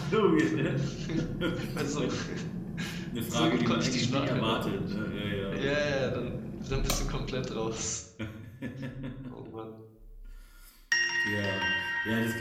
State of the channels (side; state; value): both; identical; correlation 1.00